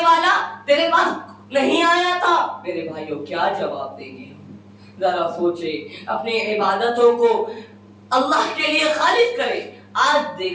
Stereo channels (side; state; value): both; identical; correlation 1.00